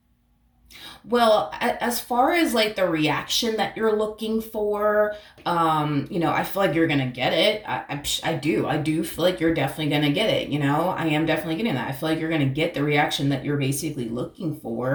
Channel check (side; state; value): both; identical; correlation 1.00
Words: well, as far as like the reaction that you're looking for, I feel like you're gonna get it. I do feel like you're definitely gonna get it. I am definitely getting that. I feel like you're gonna get the reaction that you're basically looking